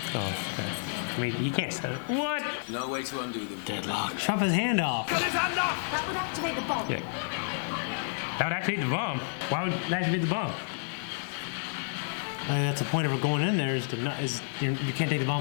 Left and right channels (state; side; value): silent; right; digital silence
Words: Oh, I mean, you can't set it. What? No way to undo them. Deadlock. Chop his hand off. Cut his hand off! That would activate the bomb. Yeah. That would activate the bomb. Why would it activate the bomb? That's the point of going in there is to not, you can't take the